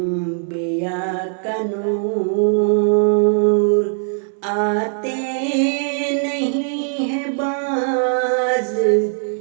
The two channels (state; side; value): silent; left; 65 dB below the other